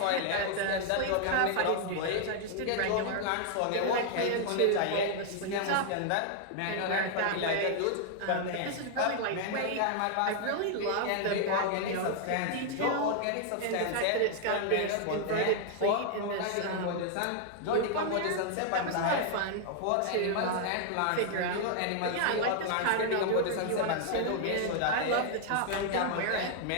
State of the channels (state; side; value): different; both; correlation 0.00